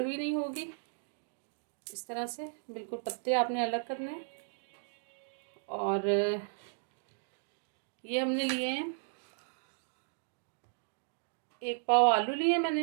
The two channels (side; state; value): left; silent; digital silence